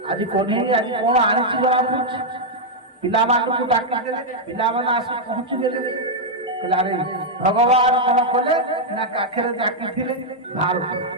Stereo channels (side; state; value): both; normal; correlation -0.03